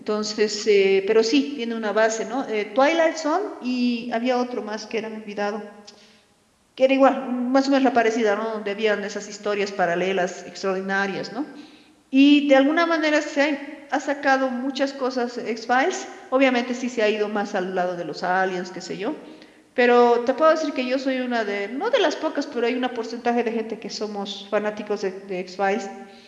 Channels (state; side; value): identical; both; correlation 1.00